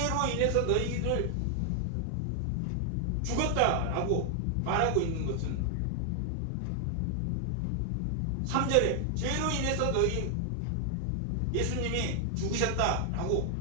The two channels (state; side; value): different; both; correlation 0.00